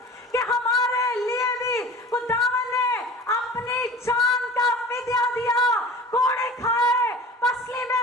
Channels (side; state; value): both; normal; correlation 0.40